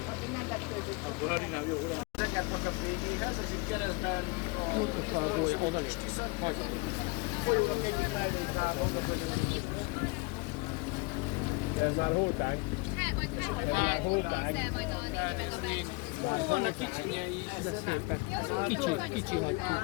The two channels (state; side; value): quieter; right; 26.7 dB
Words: nem vetődik. Akkor harinám jó, nem? Zengertnek a végéhez, ez itt keresztben Oda is. folyónak egyik mellékvágó, Ez már holták. Hát majd Vannak kicsinyei is, de szépek. Kicsi hagyjuk.